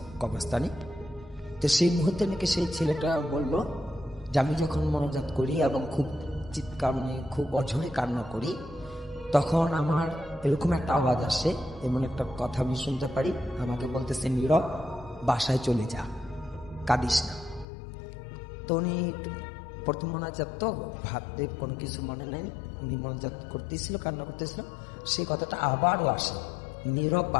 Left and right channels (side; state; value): right; drops out; at 17.7 s